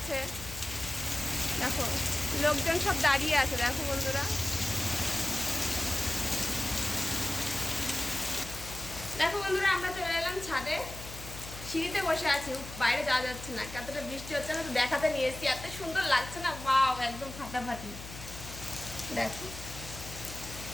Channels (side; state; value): left; noise; hum, 12 dB below the sound